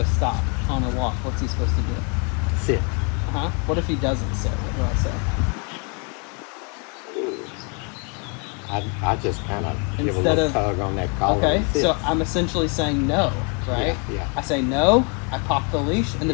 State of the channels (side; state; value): right; quieter; 36.1 dB